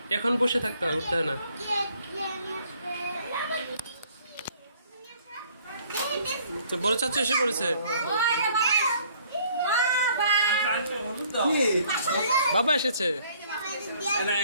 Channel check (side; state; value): both; inverted; correlation -0.61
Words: এখন বসে থাকতে হয়, উঠতে হয় না। বড় চাচ্চু এসে পড়েছে। বাবা এসেছে।